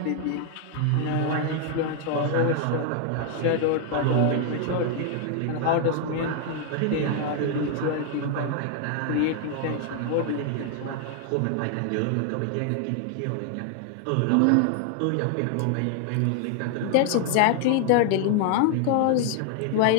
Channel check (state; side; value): different; both; correlation 0.00